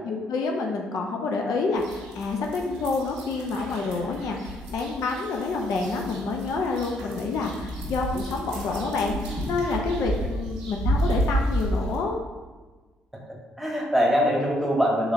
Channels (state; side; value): normal; both; correlation 0.70